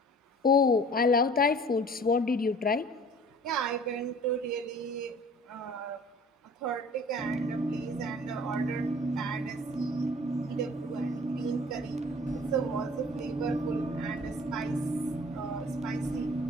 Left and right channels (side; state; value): both; normal; correlation 0.48